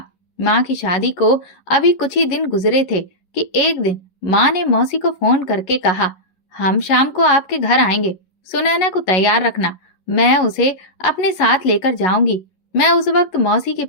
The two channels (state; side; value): late; right; 11 ms